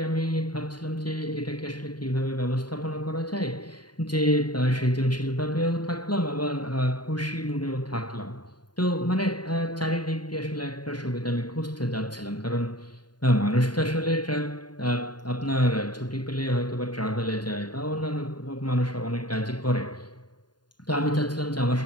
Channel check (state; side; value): late; right; 0.70 ms